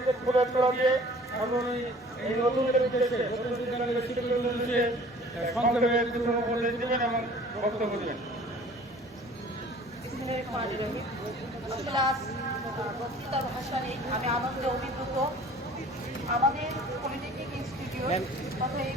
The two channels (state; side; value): normal; both; correlation 0.49